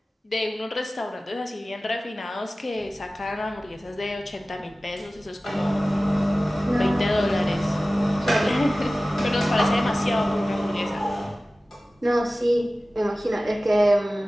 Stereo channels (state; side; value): normal; both; correlation 0.97